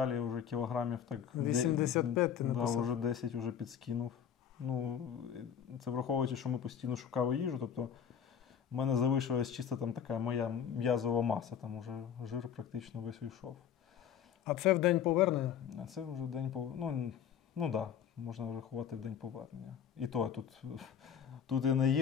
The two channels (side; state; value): right; quieter; 8.3 dB